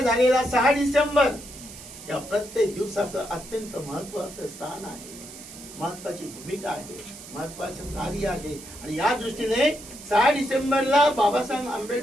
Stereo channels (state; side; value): noise; right; hiss, 15 dB below the sound